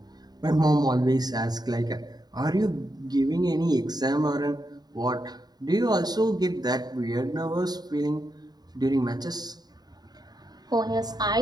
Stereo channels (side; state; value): left; late; 0.19 ms